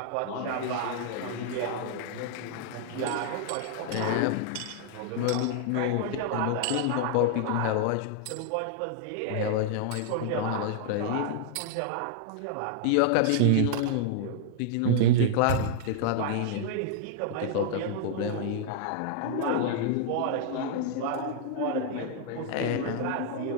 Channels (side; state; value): both; different; correlation 0.00